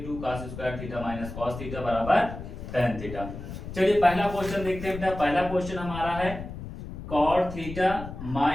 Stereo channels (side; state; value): left; noise; rumble, 10 dB below the sound